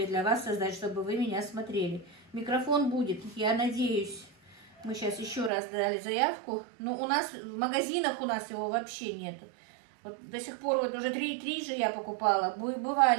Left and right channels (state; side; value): drops out; left; at 5.5 s